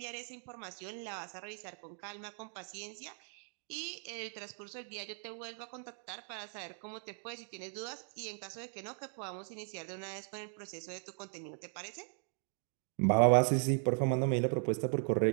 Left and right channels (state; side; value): silent; left; 52 dB below the other